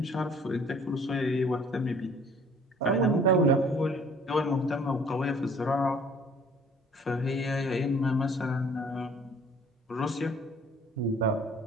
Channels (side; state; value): both; normal; correlation 0.55